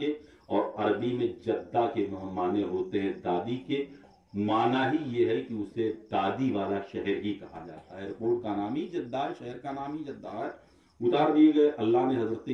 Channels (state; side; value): identical; both; correlation 1.00